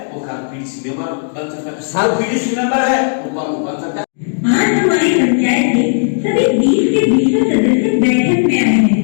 वो कल पीडीसी मेंबर बन सकता है, और पीडीसी मेंबर है वो प्रमुख बन सकता है। आज हमारी पंचायत के सभी 20 के 20 सदस्य बैठक में आए हैं।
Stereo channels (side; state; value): right; silent; digital silence